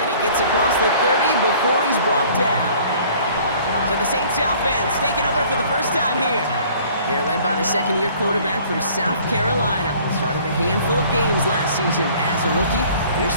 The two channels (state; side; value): inverted; both; correlation -0.53